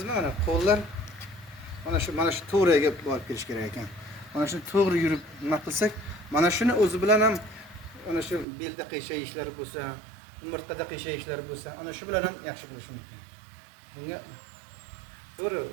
mana qo'llar mana shu to'g'riga borib kelish kerak ekan. Mana shu to'g'ri yurib nima qilsak, mana shuni o'zi bilan ham ana shu belda qiyshayishlar bo'lsa, umurtqada qiyshayishlar bo'lsa, ana shu bilan ham yaxshi bo'lishi mumkin. Bunga to'g'ri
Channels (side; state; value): left; drops out; at 8.5 s